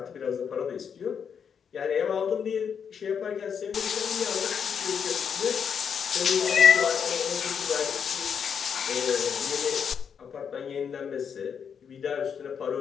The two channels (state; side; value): quieter; right; 7.1 dB